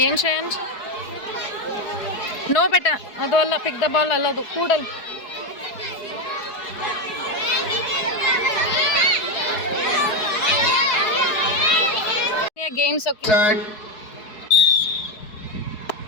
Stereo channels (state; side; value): late; right; 4.7 ms